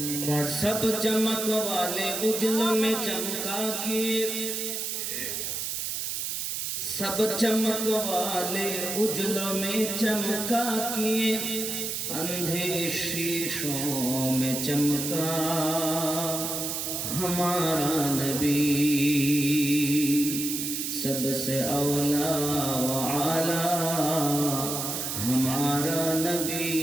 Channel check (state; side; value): noise; right; hiss, 3 dB below the sound